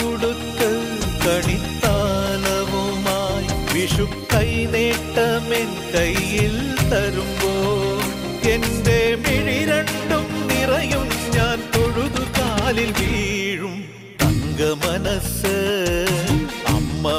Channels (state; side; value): identical; both; correlation 1.00